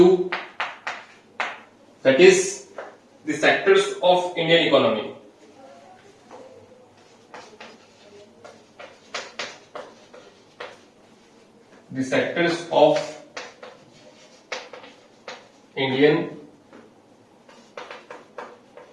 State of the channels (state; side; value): identical; both; correlation 1.00